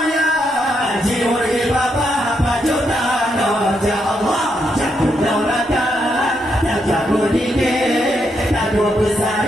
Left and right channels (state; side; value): normal; both; correlation 0.79